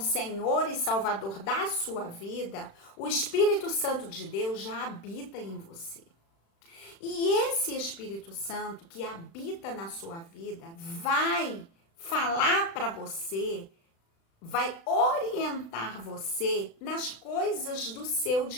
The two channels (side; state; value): right; late; 36 ms